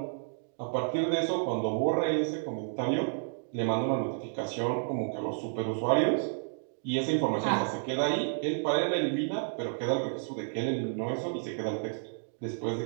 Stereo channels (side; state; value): left; silent; digital silence